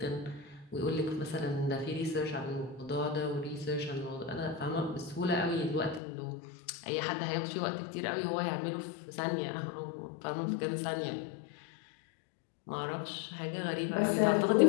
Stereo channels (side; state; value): right; drops out; at 6.0 s